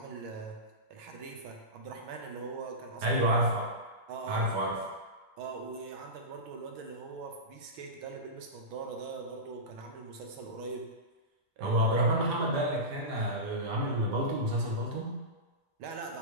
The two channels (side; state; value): left; late; 2.3 ms